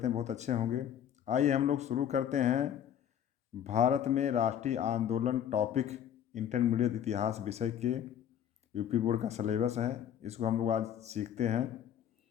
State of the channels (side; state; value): right; quieter; 9.7 dB